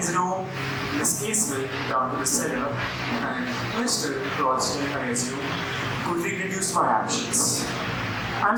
room. Miss Casewell down to the cellar. And Mr. Ralston, I assume, could reproduce my actions.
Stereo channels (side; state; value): both; identical; correlation 1.00